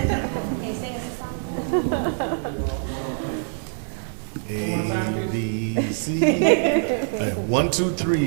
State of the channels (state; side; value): silent; left; digital silence